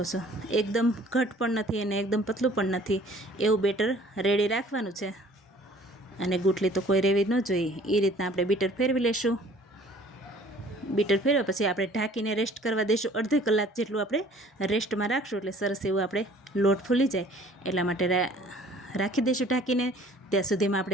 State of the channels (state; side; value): normal; both; correlation 0.53